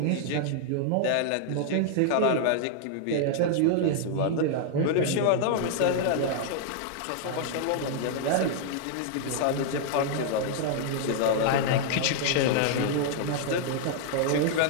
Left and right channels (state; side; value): different; both; correlation -0.01